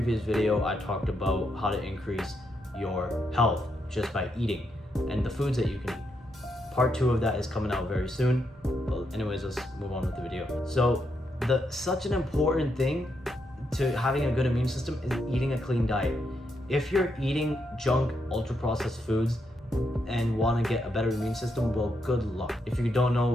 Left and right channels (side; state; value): both; normal; correlation 0.80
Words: video I talked about how to increase your health just by eating and the foods that you can eat. Part 2 of that is coming out very soon. Well, anyways, let's move on with the video. So such an important thing to having a good immune system is eating a clean diet. If you're eating junk, ultra-processed foods and want to get a better immune system, well, good luck. If you don't know